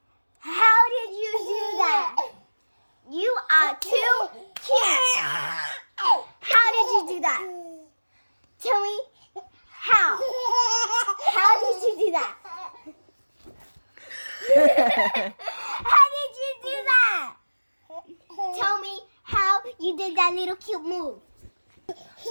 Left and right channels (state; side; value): inverted; both; correlation -1.00